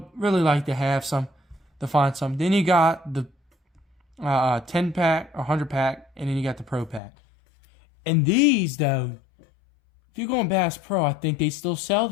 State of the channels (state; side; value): drops out; right; at 7.0 s